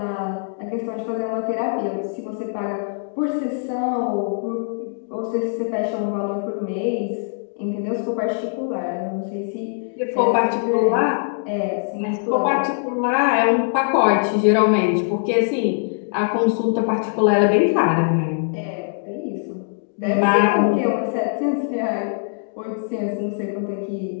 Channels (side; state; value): right; silent; digital silence